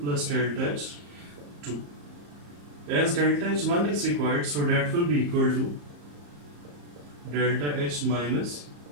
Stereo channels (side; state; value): left; late; 34 ms